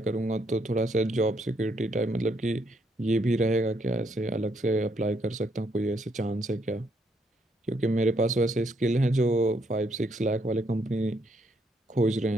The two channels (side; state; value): both; normal; correlation 0.73